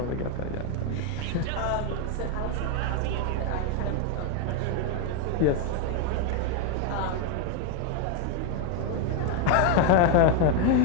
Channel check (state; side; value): different; both; correlation 0.01